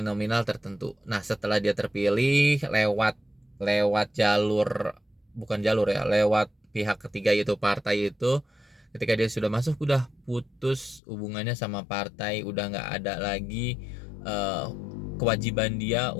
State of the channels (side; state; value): right; drops out; at 11.0 s